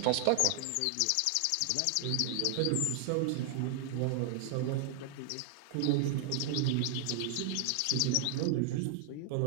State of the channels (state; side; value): different; both; correlation 0.00